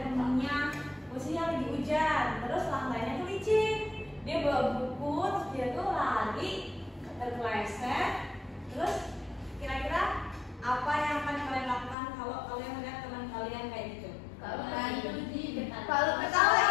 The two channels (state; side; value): drops out; right; at 12.0 s